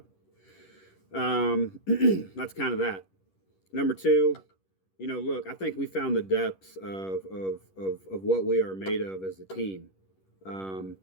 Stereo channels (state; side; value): late; right; 10 ms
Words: That's kind of that. Number 2, look, I think we found the depths of what we are made of as a team.